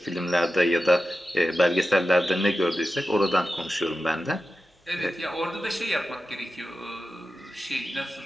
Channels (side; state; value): both; normal; correlation 0.93